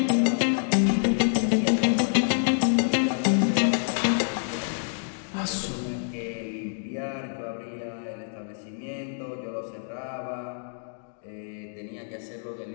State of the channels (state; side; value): silent; right; digital silence